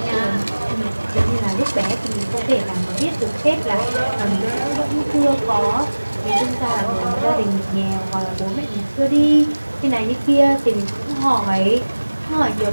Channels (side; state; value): both; inverted; correlation -1.00